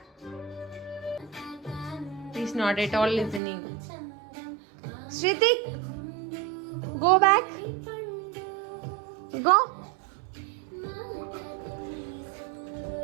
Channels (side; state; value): left; drops out; at 3.4 s